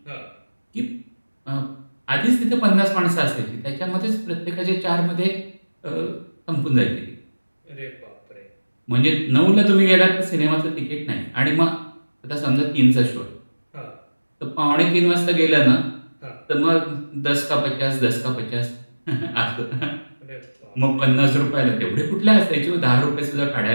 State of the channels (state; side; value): inverted; both; correlation -1.00